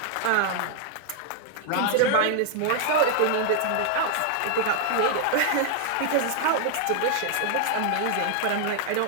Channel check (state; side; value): different; both; correlation 0.00